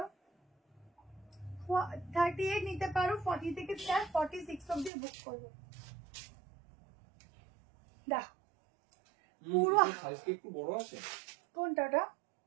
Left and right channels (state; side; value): drops out; left; at 4.9 s